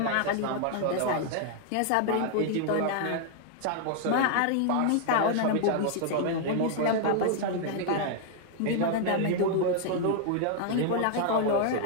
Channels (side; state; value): both; different; correlation 0.00